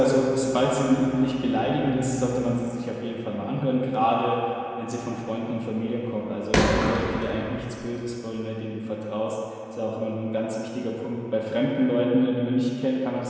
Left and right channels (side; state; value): both; identical; correlation 1.00